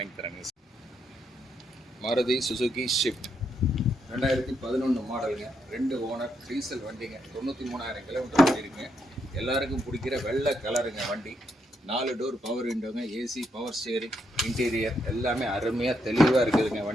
தராங்க. மாருதி சுசுகி ஷிஃப்ட் 2011 மாடலுங்க, 2 ஓனர், டீசல் வண்டிங்க, 93,000 கிலோமீட்டர் ஓடிருக்குங்க. எல்லாருக்கும் பிடிக்கிற வெள்ளை கலருங்க வண்டி. 4 டோர் பவர் விண்டோங்க, ஏசி, பவர் ஸ்டேரிங், இன்டீரியர் எல்லாமே அருமையாக தெளிவாக இருக்குதுங்க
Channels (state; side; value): normal; both; correlation 0.79